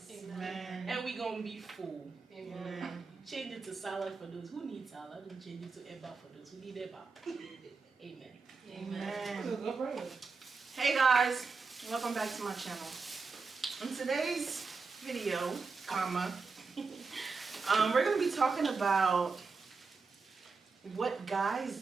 Amen. And we're going to be full. Amen. Change it to salad for those who need salad, and change it to eba for those who need eba. Amen. Amen. Hey guys, welcome back to my channel. In today's video, we're going to be talking about what guys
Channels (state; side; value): quieter; left; 4.6 dB